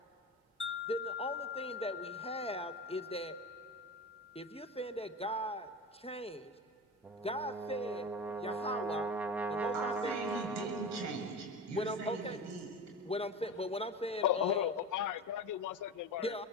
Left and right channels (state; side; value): normal; both; correlation 0.28